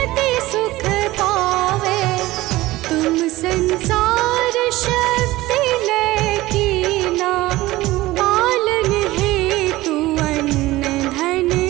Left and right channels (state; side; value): quieter; left; 18.1 dB